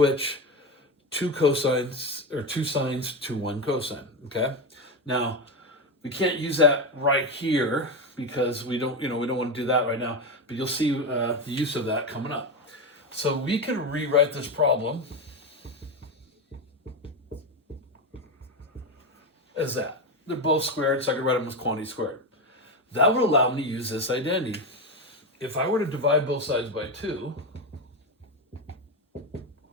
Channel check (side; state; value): both; normal; correlation 0.14